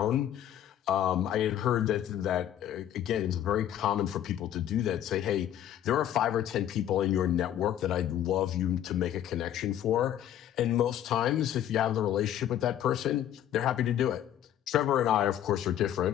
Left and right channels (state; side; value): quieter; right; 11.1 dB